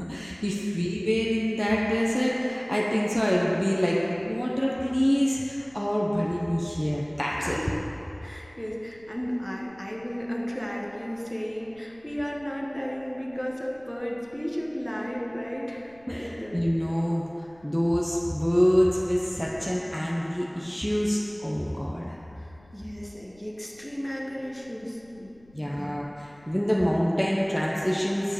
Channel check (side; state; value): left; noise; rumble, 28 dB below the sound